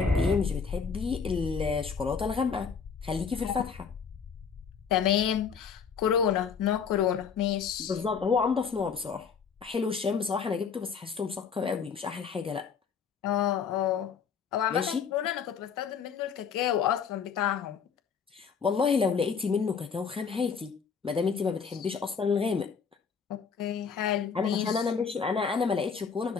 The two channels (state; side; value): quieter; right; 6.2 dB